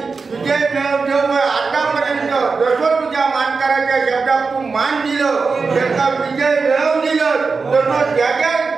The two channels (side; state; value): left; quieter; 4.6 dB